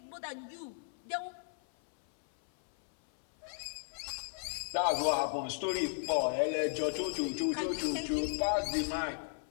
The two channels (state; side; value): silent; right; 54 dB below the other